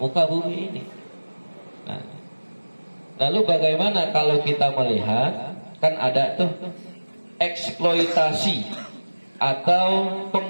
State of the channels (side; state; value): both; inverted; correlation -1.00